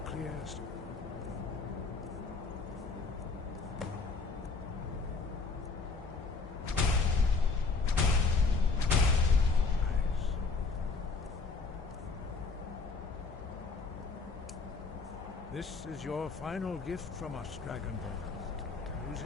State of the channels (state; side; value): quieter; right; 4.3 dB